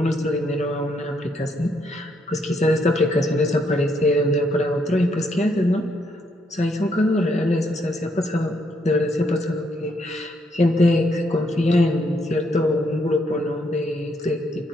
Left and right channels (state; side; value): normal; both; correlation 0.74